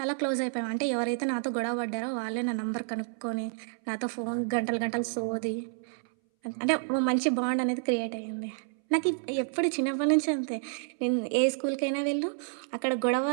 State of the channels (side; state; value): left; silent; 58 dB below the other